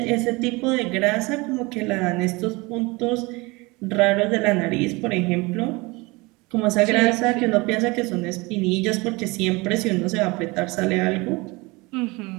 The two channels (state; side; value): quieter; left; 24.6 dB